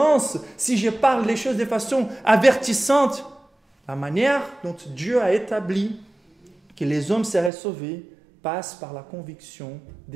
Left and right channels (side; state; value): left; drops out; at 7.5 s